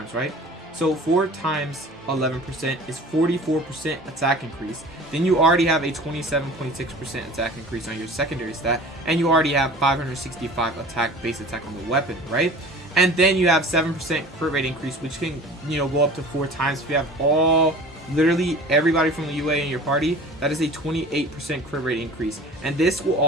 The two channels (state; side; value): normal; both; correlation 0.42